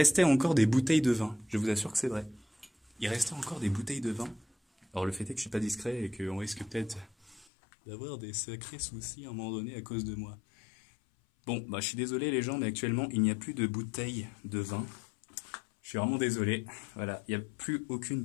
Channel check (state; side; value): drops out; right; at 7.5 s